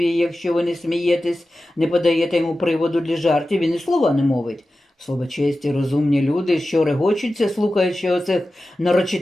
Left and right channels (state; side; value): normal; both; correlation 0.94